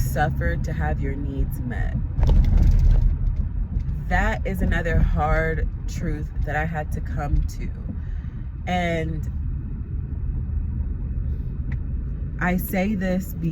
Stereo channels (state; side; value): identical; both; correlation 1.00